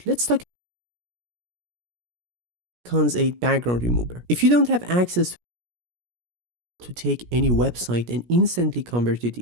let's talk Icons 8 background remover. If you don't have access to take any website and instantly convert it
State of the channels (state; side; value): late; left; 17 ms